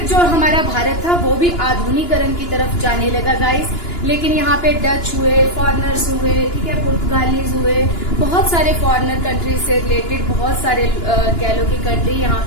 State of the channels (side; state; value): right; late; 2.9 ms